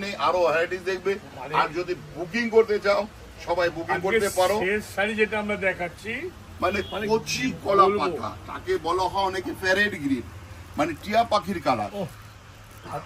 নেই, আরো ভ্যারাইটিস দেখবে। আর যদি বুকিং করতে চাও, সবাই বুকিং করতে পারো। শেষ শাড়ি যেটা আমরা দেখাচ্ছি, মানে কচি কলা পাতা, তাকে বলা হয় অনেকে প্যারেড গ্রিন, মানে টিয়া পাখির কালার।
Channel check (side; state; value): both; identical; correlation 1.00